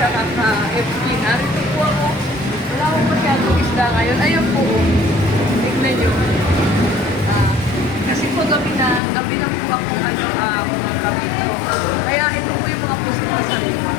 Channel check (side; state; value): right; drops out; at 9.0 s